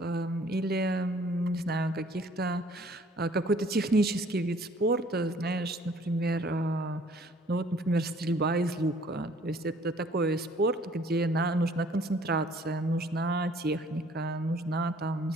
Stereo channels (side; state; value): both; normal; correlation 0.57